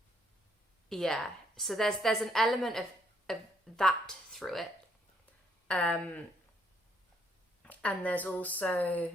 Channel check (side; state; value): both; normal; correlation 0.71